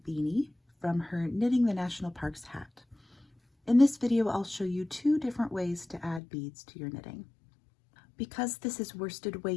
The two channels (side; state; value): right; drops out; at 6.2 s